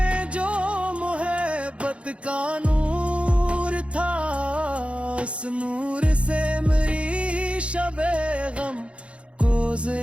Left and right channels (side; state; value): left; late; 0.060 ms